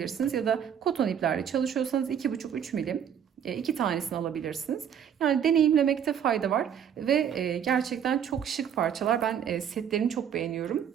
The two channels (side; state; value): left; quieter; 8.5 dB